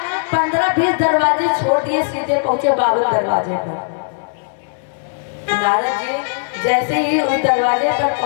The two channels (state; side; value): silent; right; digital silence